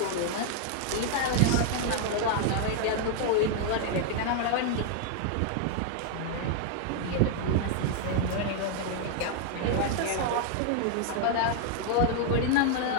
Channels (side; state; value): both; different; correlation 0.00